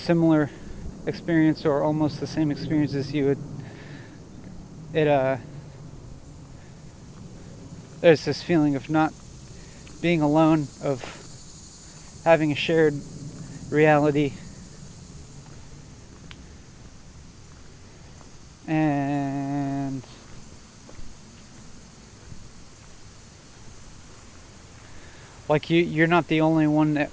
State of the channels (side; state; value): both; identical; correlation 1.00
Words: experience or almost the same experience as you, there's this feeling of not being alone, of having a shared reality. And like you're not the only one that